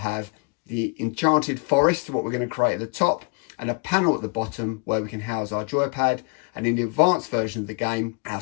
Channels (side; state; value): right; quieter; 32.7 dB